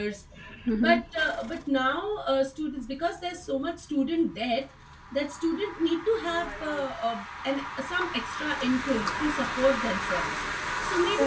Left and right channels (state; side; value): identical; both; correlation 1.00